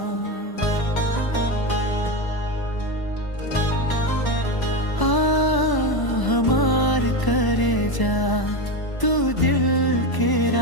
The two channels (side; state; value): right; late; 1.0 ms